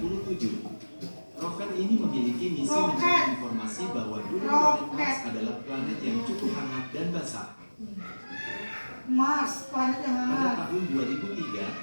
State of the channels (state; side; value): inverted; both; correlation -1.00